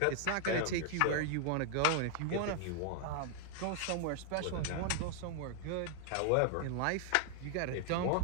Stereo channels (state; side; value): different; both; correlation 0.00